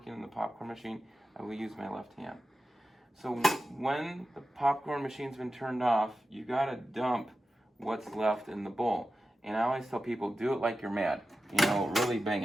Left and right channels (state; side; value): normal; both; correlation 0.93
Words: in the popcorn machine, I will use my left hand. So when the popcorn machine's been turned off, you gotta dump what's left in the bowl. And I always tell people, do it like you're mad. Really bang